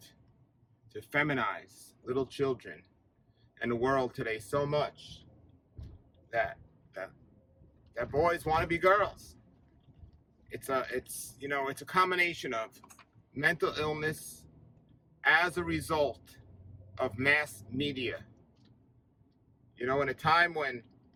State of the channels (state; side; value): identical; both; correlation 1.00